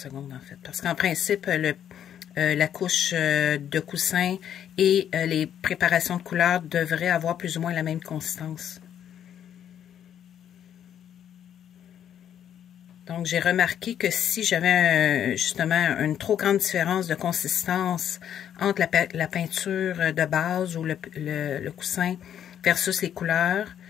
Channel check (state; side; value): quieter; right; 9.7 dB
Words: en fait. Parce qu'en principe, la couche de coussin et les préparations de couleurs devraient avoir plus ou moins la même consistance. Donc, j'ai remarqué que si j'avais justement une trop grande différence de consistance entre la peinture de base ou le coussin versus les couleurs,